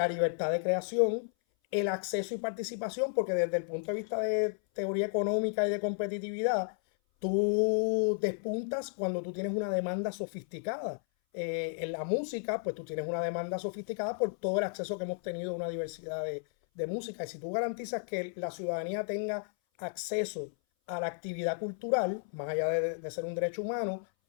libertad de creación, el acceso y participación, porque desde el punto de vista de teoría económica y de competitividad, tú despuntas cuando tú tienes una demanda sofisticada. En la música, pues tú tienes una demanda sofisticada por todo el acceso que hemos tenido a una diversidad de música. Y si tú garantizas que la ciudadanía tenga acceso a la actividad cultural, más allá de ser un derecho humano,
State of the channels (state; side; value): silent; right; 56 dB below the other